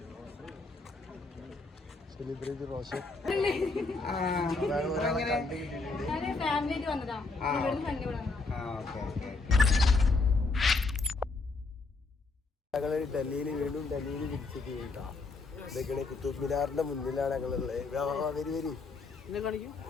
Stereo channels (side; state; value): right; quieter; 3.8 dB